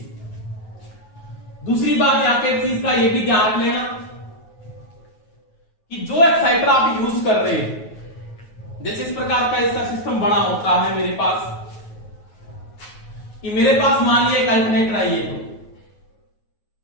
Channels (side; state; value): right; late; 9.4 ms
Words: दूसरी बात यहां पे एक चीज का यह भी ध्यान रख लेना कि जो एक्साइटर आप यूज कर रहे हैं, जैसे इस प्रकार का इसका सिस्टम बना होता है मेरे पास, कि मेरे पास मान लिया एक अल्टरनेटर है, ये तो